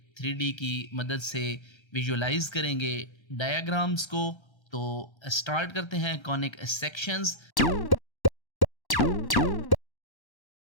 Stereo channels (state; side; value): late; right; 1.1 ms